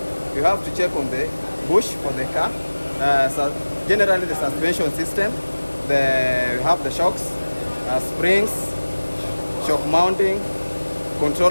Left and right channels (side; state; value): both; inverted; correlation -1.00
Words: you have to check on the bush for the car. So generally the suspension system, you have the shocks, springs, shock mounting,